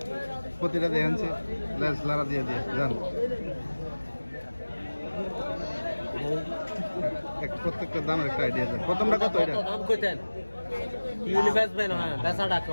প্রতিটা দেখাচ্ছে লারা দিয়ে দিয়ে জান প্রত্যেকটা দামের একটা আইডিয়া দেন। প্রথমটা কত? এটা দাম কইতেন ইউনি বেচবেন? হ্যাঁ, বেচা ডাকো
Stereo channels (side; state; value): both; inverted; correlation -1.00